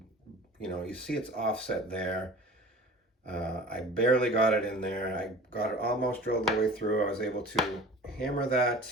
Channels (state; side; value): normal; both; correlation 0.42